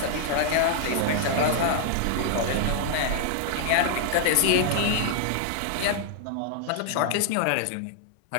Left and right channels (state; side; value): different; both; correlation -0.01